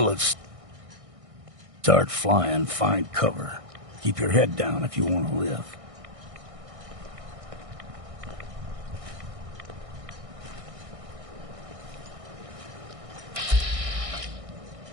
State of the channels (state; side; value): late; left; 1.6 ms